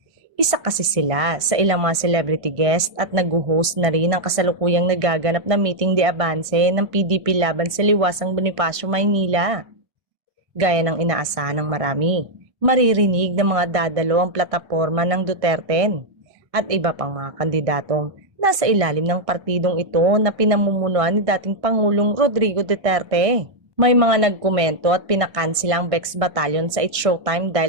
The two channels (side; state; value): left; late; 1.5 ms